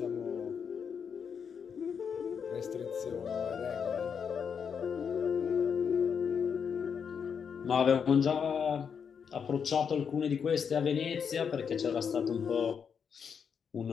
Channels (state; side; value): quieter; right; 6.8 dB